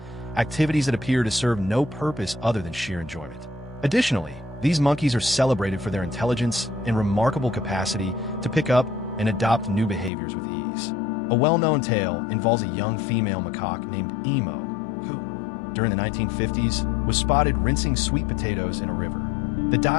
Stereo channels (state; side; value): drops out; right; at 10.1 s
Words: activities that appear to serve no purpose other than sheer enjoyment. Additionally, these monkeys are celebrated for their intelligence and remarkable capacity to pick up and adopt new behaviors with ease. A well-known tale involves a young female macaque named Emo, who, during the 1950s, was spotted rinsing sweet potatoes in a river. The